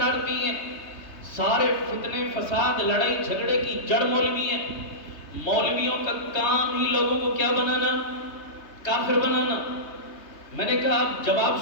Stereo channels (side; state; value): right; late; 3.3 ms